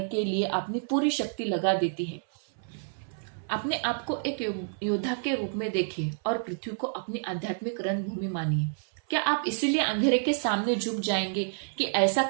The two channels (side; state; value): left; silent; 59 dB below the other